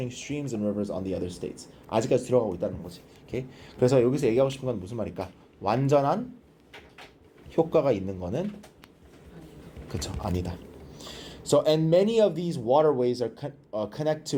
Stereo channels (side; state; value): both; identical; correlation 1.00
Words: streams and rivers on the other states. 아직까지 들어가고 있다는 거지. Okay? 그래서 여기서 얘기하고 싶은 건 무슨 말일까? 완전한 효과가 있는 거는 그쵸 아니다. So and many of these waterways are connect